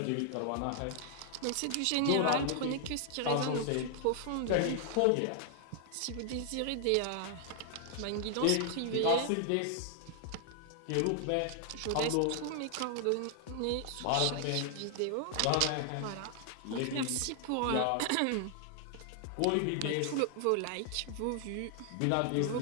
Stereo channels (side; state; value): both; different; correlation 0.00